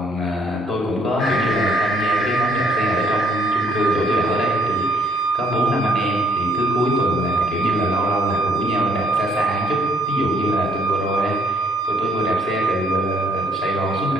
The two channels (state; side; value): normal; both; correlation 0.65